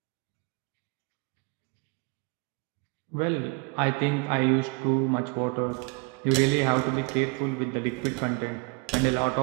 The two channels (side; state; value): left; quieter; 31.5 dB